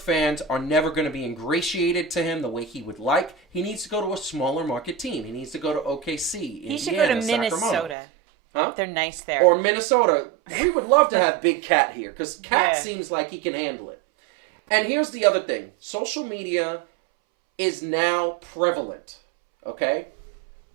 are never going to be ingratiated to him the way he would like. He needs to go to a smaller market team. He needs to go to OKC, He should go to Sacramento. Minnesota. Huh? They're nice there. Or Minnesota. We would love to have Big Cat here because Cat seems like he can handle it. And here's the other thing. Social media is now prevalent, okay?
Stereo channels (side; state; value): left; drops out; at 8.0 s